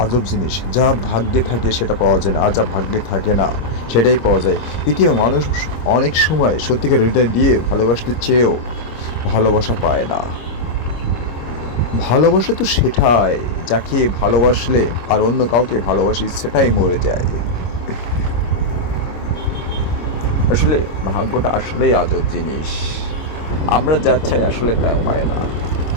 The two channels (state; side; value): late; right; 25 ms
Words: আজব জিনিস, যা ভাগ্যে থাকে সেটা পাওয়া যায় না, আর যা ভাগ্যে থাকে না সেটাই পাওয়া যায়। পৃথিবীর মানুষ অনেক সময় সত্যিকার হৃদয় দিয়ে ভালোবাসতে চেয়েও ভালোবাসা পায় না। ভালোবাসা তো সেটাই, যাকে ভালোবাসলে আর অন্য কাউকে ভালোবাসি সেটাই মরে যায়। আসলে ভাগ্যটা আসলেই আজব জিনিস, আমরা যা চাই আসলে তা পায় না,